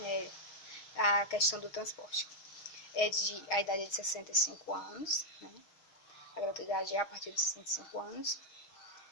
a questão do transporte. A idade é de 65 anos, a gratuidade é a partir de 65 anos.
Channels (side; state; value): right; late; 6.3 ms